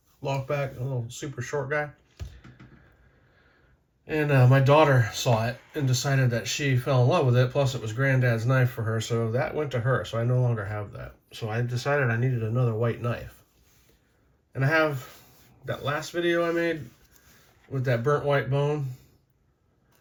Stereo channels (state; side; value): identical; both; correlation 1.00